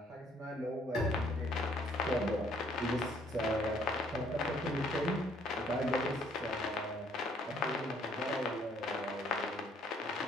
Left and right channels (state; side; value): normal; both; correlation 0.63